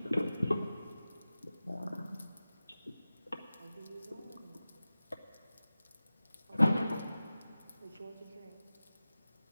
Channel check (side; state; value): both; inverted; correlation -0.96